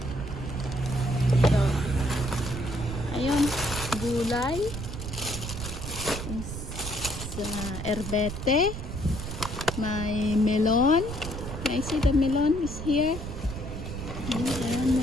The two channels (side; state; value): right; noise; rumble, 7 dB below the sound